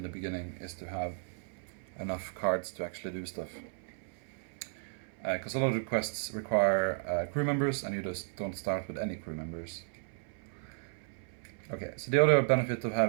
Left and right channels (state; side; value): silent; left; 55 dB below the other